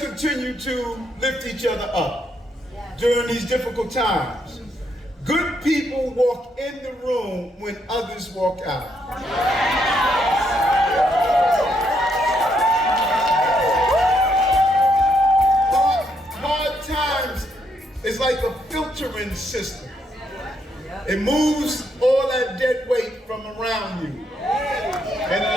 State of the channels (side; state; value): both; normal; correlation 0.75